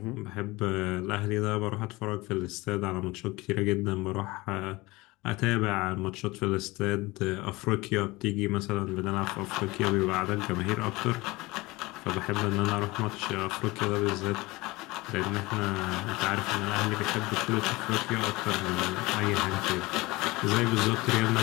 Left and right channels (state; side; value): quieter; right; 21.8 dB